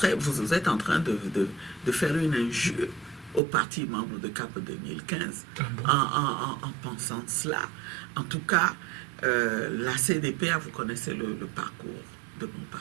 vous êtes en train de faire une injure aux partis membres de CAP 2015 en pensant cela? En tout cas, la CDPA, vous connaissez le parcours de mon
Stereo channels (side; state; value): left; drops out; at 3.4 s